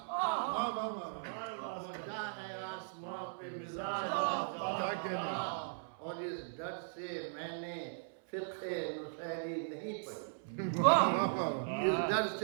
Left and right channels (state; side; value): silent; left; 52 dB below the other